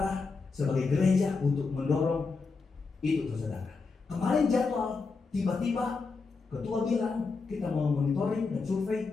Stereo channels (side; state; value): right; quieter; 4.4 dB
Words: sebagai gereja untuk mendorong itu saudara. Kemarin jadwal, tiba-tiba ketua bilang kita mau monitoring dan